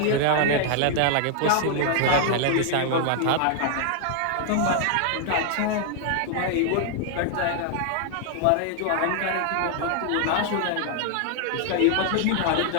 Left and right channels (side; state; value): both; different; correlation 0.00